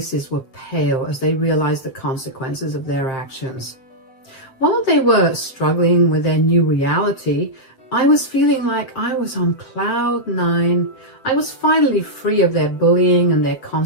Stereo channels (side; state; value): right; late; 7.7 ms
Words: were pale as they realized the consequences of their actions. While they were struggling with their new reality, I was feeling like I was on cloud 9. I was finally free of their bullying and their